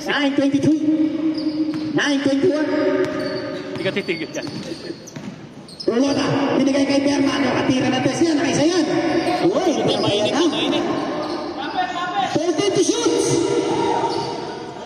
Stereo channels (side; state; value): both; identical; correlation 1.00